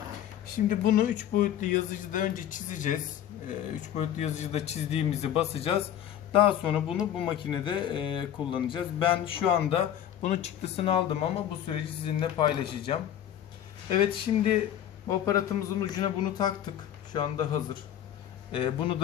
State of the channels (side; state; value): right; quieter; 10.7 dB